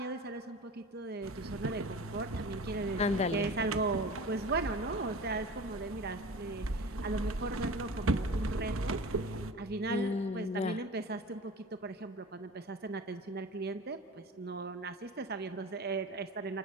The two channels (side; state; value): both; normal; correlation 0.36